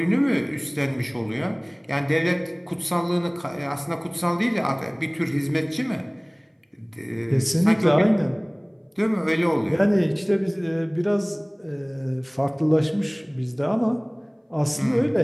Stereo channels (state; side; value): identical; both; correlation 1.00